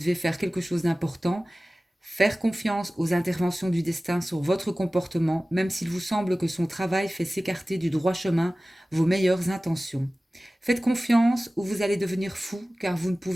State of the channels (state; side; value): normal; both; correlation 0.97